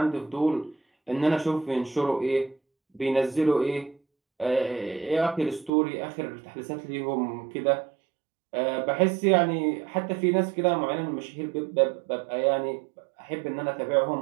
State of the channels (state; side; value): drops out; left; at 5.7 s